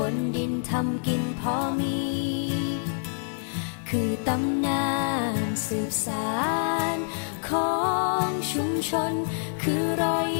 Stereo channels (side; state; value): right; silent; 60 dB below the other